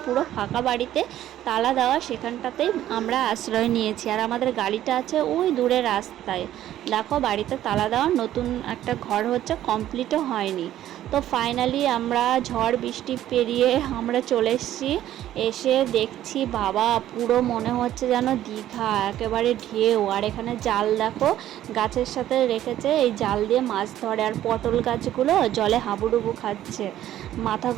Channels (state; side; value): quieter; left; 12.6 dB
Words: পুরো ফাঁকা বাড়িতে, তালা দেওয়া, সেখানটাতেই আমরা আশ্রয় নিয়েছি। আর আমাদের গাড়িটা আছে ওই দূরে রাস্তায়। দেখো বাড়িতে তালা দেওয়া, নতুন একটা ঘর হচ্ছে, কমপ্লিটও হয়নি। তো ফাইনালি আমরা ঝড় বৃষ্টি পেরিয়ে আমরা চলে এসেছি। এসে দেখছি বাবা, পুরো মনে হচ্ছে যেন দীঘা, একেবারে ঢেউ। আর এখানে জাল দেখো গাছের সাথে রেখেছে, এই জাল দিয়ে মাছ ধরে। আর পটল গাছগুলো জলে হাবুডুবু খাচ্ছে,